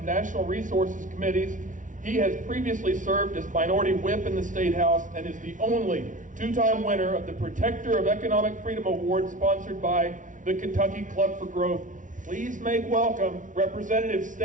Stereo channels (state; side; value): late; left; 0.37 ms